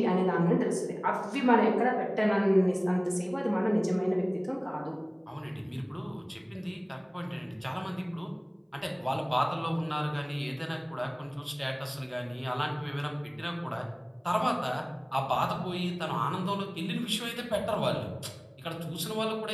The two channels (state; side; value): identical; both; correlation 1.00